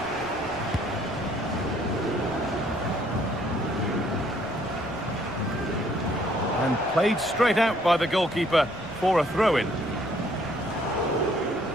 And played straight out by the goalkeeper for a throw-in.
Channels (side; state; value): left; noise; rumble, 23 dB below the sound